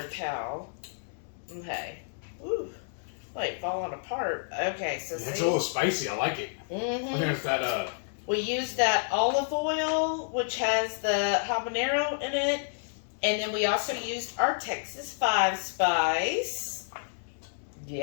towel. Okay. Ooh. Wait, falling apart. Okay, so it's a little spicy. I like it. Mm-hmm. I think it's that, we used that olive oil, which has the habanero in it. And then we also used our Texas 5 spice.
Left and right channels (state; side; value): silent; right; digital silence